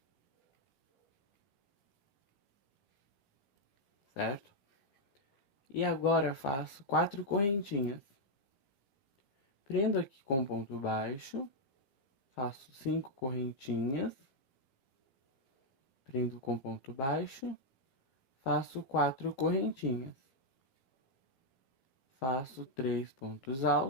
Certo? E agora faço 4 correntinhas. Prendo aqui com ponto baixo, faço 5 correntinhas, prendo com ponto baixo, faço 4 correntinhas, faço 3 pontos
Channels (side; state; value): right; late; 15 ms